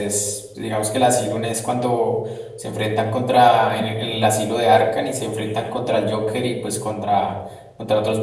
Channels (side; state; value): both; identical; correlation 1.00